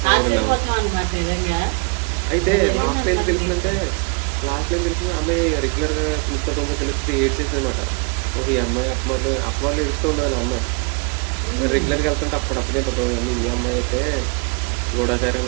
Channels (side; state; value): left; quieter; 34.2 dB